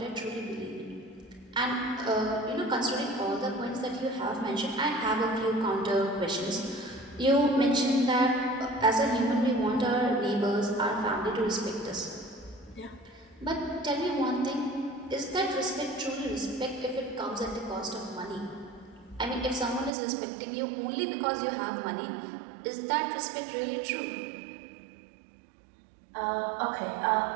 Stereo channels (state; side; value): drops out; left; at 19.9 s